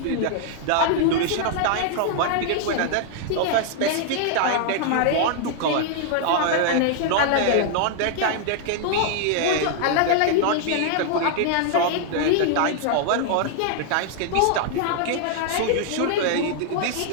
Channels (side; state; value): both; different; correlation 0.00